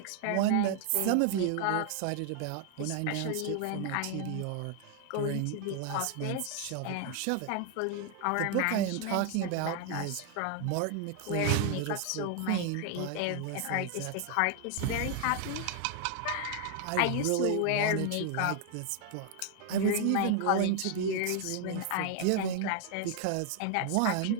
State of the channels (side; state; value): both; different; correlation 0.00